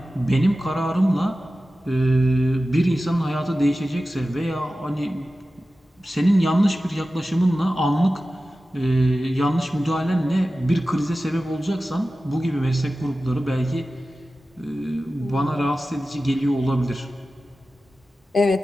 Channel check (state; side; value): normal; both; correlation 0.95